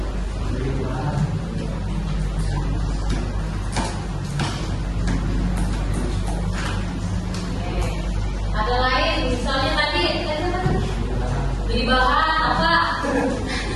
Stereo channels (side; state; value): both; identical; correlation 1.00